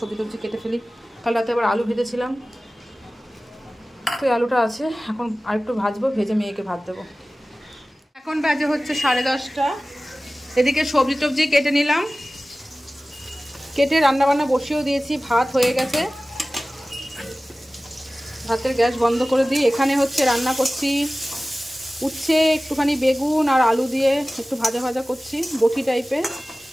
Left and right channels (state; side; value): normal; both; correlation 0.97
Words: টবজি কেটে ফেলি। কাল রাতে আবার আলু ভেজেছিলাম, তো আলুটা আছে, এখন আরেকটু ভাজবো, ভেজে মেয়েকে ভাত দেবো। এখন বাজে হচ্ছে 10:30। এদিকে সবজি টবজি কেটে নিলাম, কেটে রান্নাবান্না বসিয়েও দিয়েছি। ভাত হয়ে গেছে, ভাতের গ্যাস বন্ধ করে দিই। এখানে হচ্ছে রান্না করছি উচ্ছে, একটুখানি বেগুন আর আলু দিয়ে একটু ভাজা ভাজা করছি, বটি টাইপের।